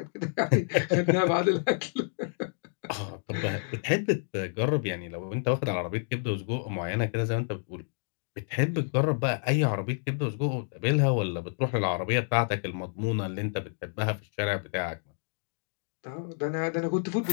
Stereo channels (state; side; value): silent; right; digital silence